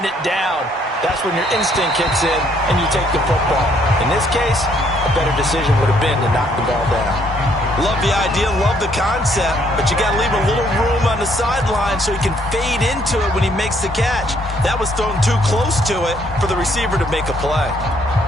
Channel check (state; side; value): normal; both; correlation 0.67